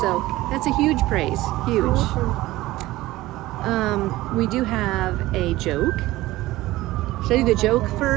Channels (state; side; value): quieter; left; 17.6 dB